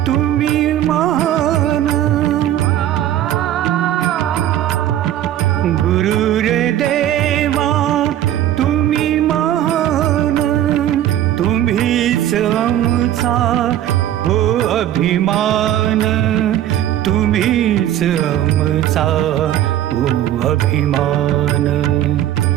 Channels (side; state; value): left; quieter; 12.0 dB